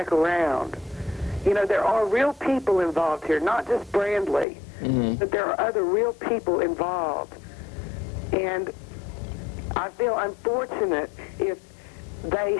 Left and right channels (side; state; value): right; drops out; at 4.5 s